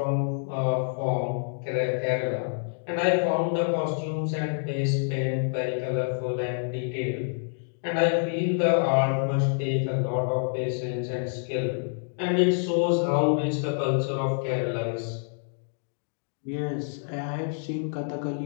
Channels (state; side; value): silent; right; digital silence